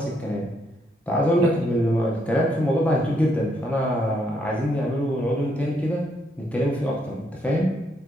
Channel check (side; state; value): both; normal; correlation 0.74